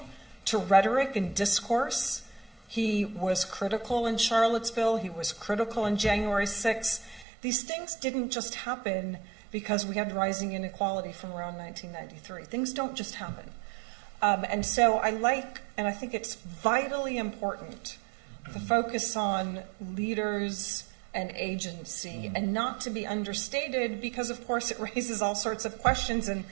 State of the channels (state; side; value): drops out; left; at 7.2 s